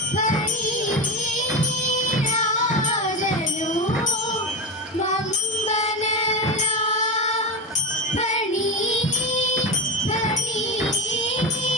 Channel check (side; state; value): both; normal; correlation 0.19